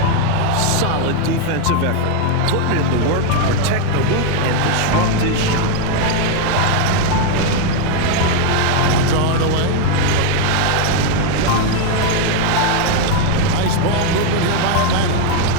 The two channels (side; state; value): both; different; correlation 0.01